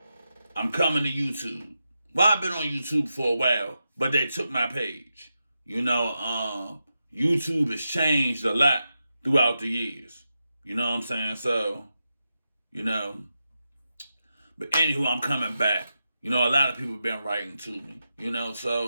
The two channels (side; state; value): both; inverted; correlation -0.88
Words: I'm coming to YouTube. Well, I've been on YouTube for a while, but they took my page. YouTube has changed a lot throughout the years. You know what I'm saying? So, you know, but anywho, I'm coming back. A lot of people have been writing to me,